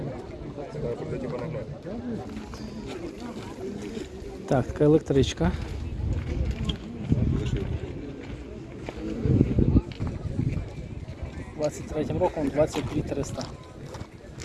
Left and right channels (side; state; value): both; identical; correlation 1.00